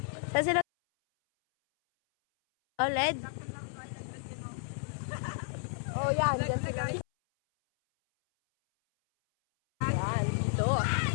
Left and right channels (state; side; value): silent; right; 56 dB below the other